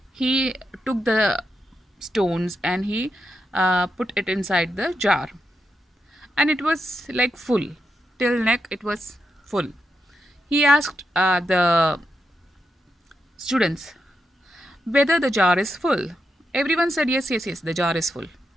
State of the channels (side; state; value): both; normal; correlation 0.84